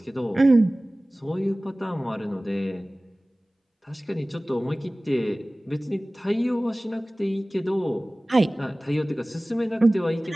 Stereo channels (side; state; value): both; normal; correlation 0.98